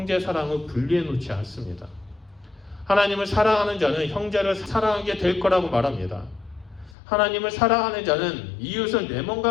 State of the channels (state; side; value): drops out; right; at 7.0 s